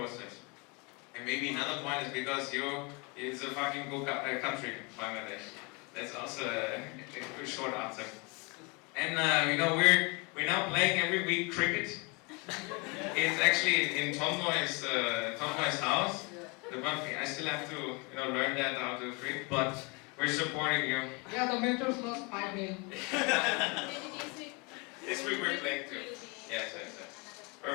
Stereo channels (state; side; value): quieter; right; 30.1 dB